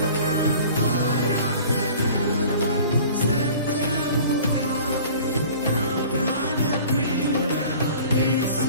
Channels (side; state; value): both; inverted; correlation -0.46